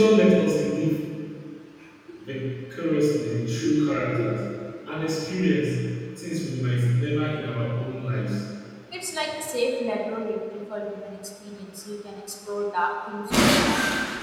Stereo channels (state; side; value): identical; both; correlation 1.00